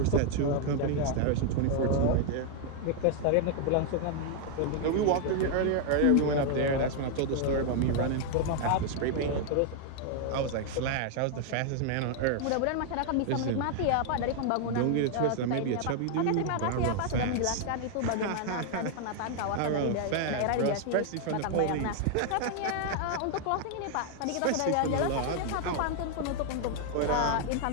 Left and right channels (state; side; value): different; both; correlation 0.00